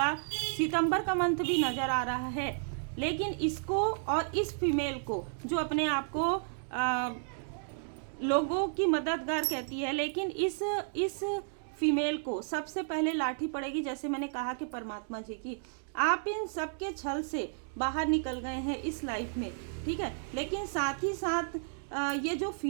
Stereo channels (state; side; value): silent; left; digital silence